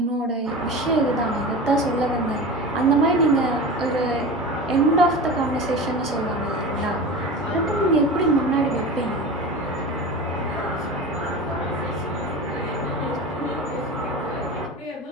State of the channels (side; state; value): both; normal; correlation 0.31